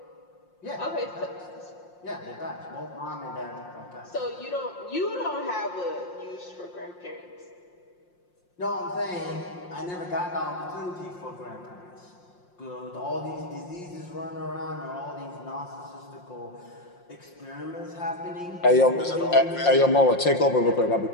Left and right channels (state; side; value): late; right; 5.7 ms